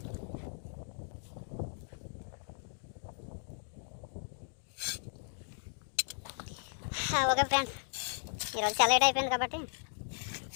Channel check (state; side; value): silent; right; digital silence